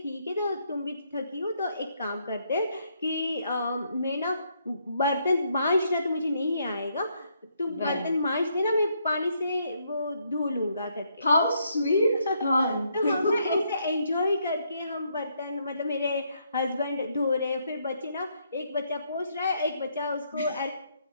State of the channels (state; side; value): inverted; both; correlation -0.74